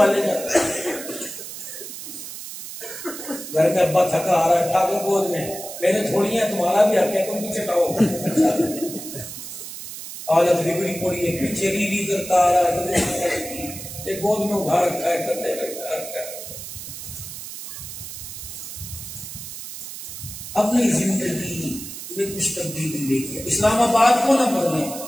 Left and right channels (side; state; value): right; noise; hiss, 10 dB below the sound